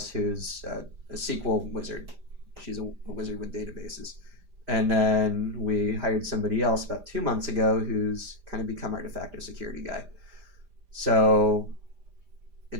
who's a SQL wizard. She's a wizard with databases. And then we hired somebody else about 2 months ago who's kind of become our de facto security guy. So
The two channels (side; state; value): left; late; 5.0 ms